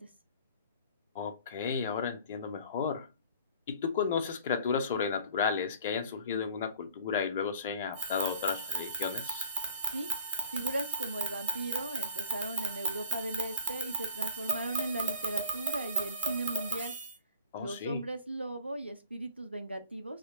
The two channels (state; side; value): inverted; both; correlation -0.43